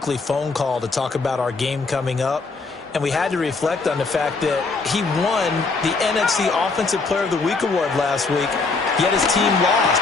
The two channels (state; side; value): quieter; right; 4.0 dB